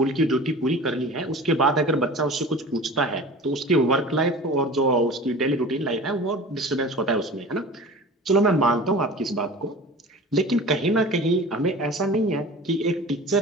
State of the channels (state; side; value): normal; both; correlation 0.38